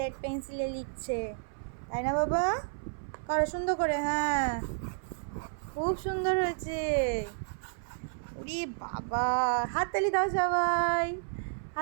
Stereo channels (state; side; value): silent; left; 57 dB below the other